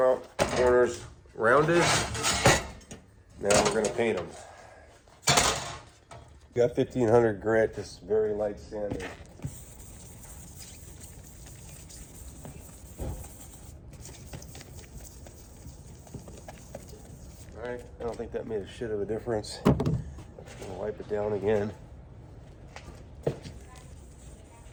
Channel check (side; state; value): both; identical; correlation 1.00